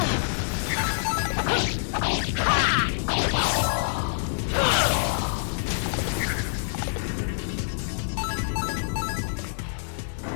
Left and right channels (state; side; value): silent; right; digital silence